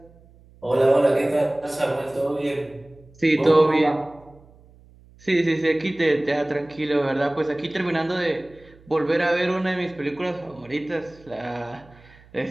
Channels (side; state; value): right; noise; hum, 26 dB below the sound